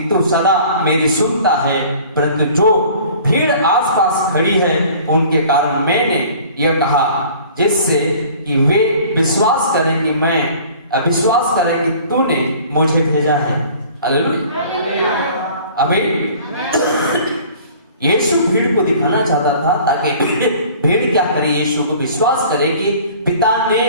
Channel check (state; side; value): inverted; both; correlation -0.48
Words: तू सदा मेरी सुनता है, परंतु जो भीड़ आसपास खड़ी है उनके कारण मैंने यह कहा, जिससे कि वे विश्वास करें कि तूने मुझे भेजा है। हालेलुया आमीन। यीशु भीड़ को दिखाना चाहता था ताकि भीड़ क्या करे, यीशु को विश्वास करे कि पिता ने